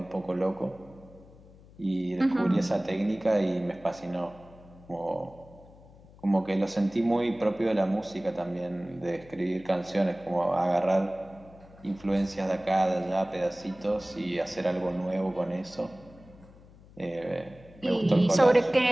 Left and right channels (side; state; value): left; noise; hum, 23 dB below the sound